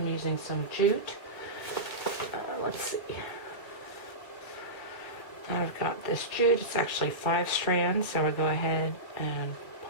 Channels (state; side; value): late; right; 2.2 ms